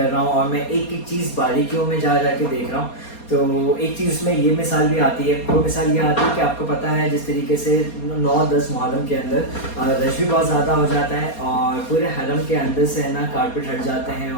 रहा हूँ और मैं एक एक चीज़ बारीकियों में जा के देख रहा हूँ। तो एक चीज़ उसमें ये मिसाल भी आती है, वो मिसाल ये आती है कि आपको पता है जिस तरीके से 9-10 मुहर्रम के अंदर रश भी बहुत ज़्यादा हो जाता है और पूरे हरम के अंदर से है ना कारपेट हट जाते हैं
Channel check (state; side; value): late; right; 4.3 ms